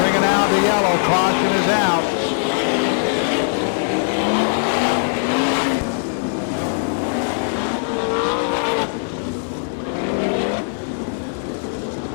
out the yellow. Caution is out.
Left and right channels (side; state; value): right; silent; digital silence